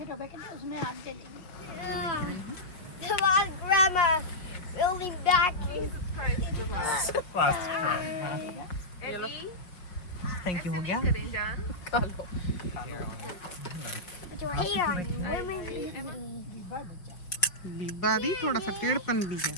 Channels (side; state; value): right; late; 5.5 ms